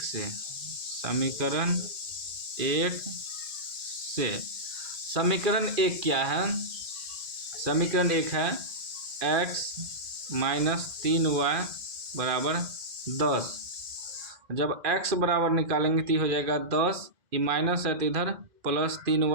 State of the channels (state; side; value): late; left; 2.0 ms